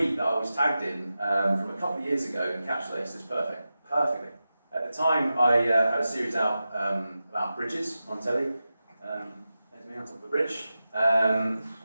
that I was tagged in from a couple of years ago encapsulates this perfectly. At the time, I had a series out about bridges on telly. There's me on top of the bridge.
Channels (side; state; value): both; inverted; correlation -0.93